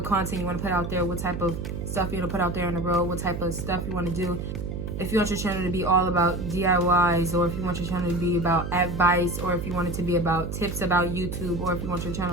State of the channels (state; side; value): noise; right; hum, 5 dB below the sound